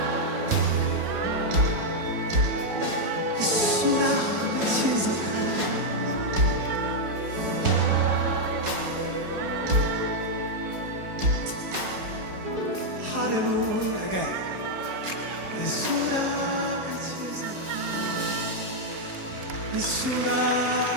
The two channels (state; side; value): late; left; 4.7 ms